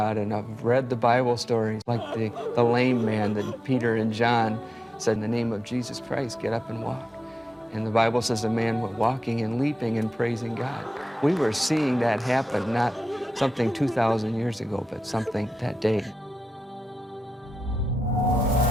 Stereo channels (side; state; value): both; normal; correlation 0.92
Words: and I've read the Bible stories like the lame man that Peter and John said, in the name of Jesus Christ, get up and walk. And the Bible says a man was walking and leaping and praising God. We were seeing that happen, not something 2,000 years ago, but something that day.